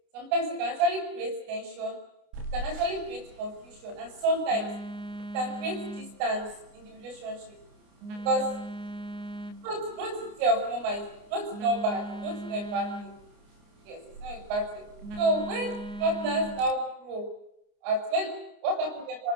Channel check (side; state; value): left; late; 29 ms